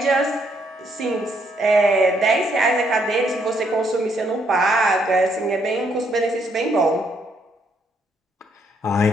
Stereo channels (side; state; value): both; normal; correlation 0.72